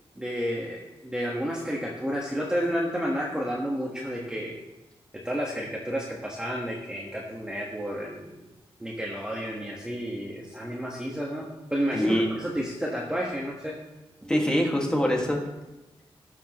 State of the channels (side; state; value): both; normal; correlation 0.86